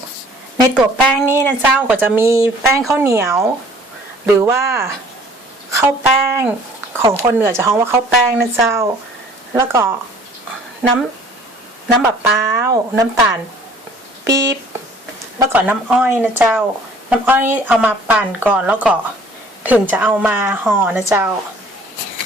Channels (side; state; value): both; normal; correlation 0.54